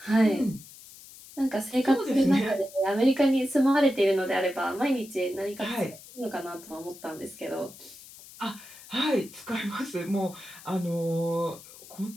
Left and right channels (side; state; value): left; noise; hiss, 19 dB below the sound